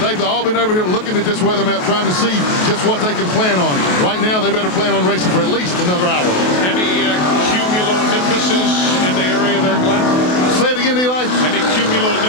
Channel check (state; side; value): late; right; 28 ms